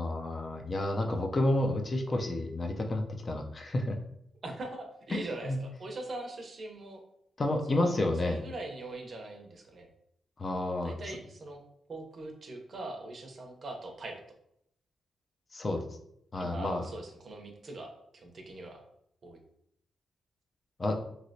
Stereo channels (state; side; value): normal; both; correlation 0.87